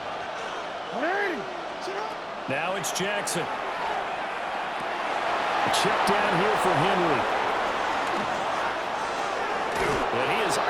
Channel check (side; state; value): both; identical; correlation 1.00